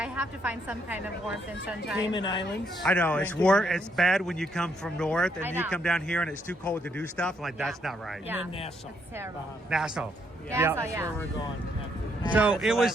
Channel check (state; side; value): normal; both; correlation 0.74